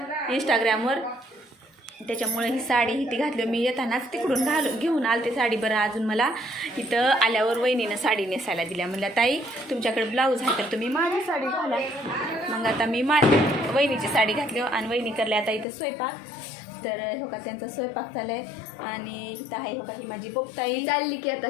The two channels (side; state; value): right; drops out; at 15.7 s